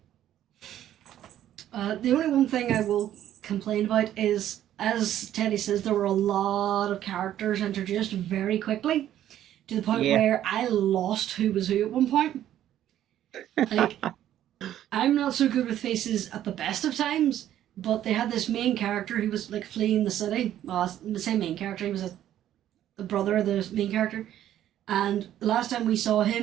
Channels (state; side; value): quieter; left; 11.8 dB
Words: The only one thing I will complain about is, as Teddy says, there were a lot of characters introduced very quickly to the point Yeah. where I lost who was who at one point. Like, I'm not so good with faces at the best of times, but they had this main character who was like fleeing the city. Well, the same main character. He was the brother of the main character. And the last time we saw